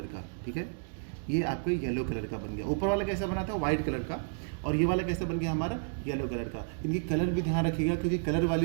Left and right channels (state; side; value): silent; left; digital silence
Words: का। ठीक है, ये आपका येलो कलर का बन गया। ऊपर वाला कैसा बना था, व्हाइट कलर का, और ये वाला कैसे बन गया हमारा, येलो कलर का। इनकी कलर भी ध्यान रखिएगा, क्योंकि कलर वाली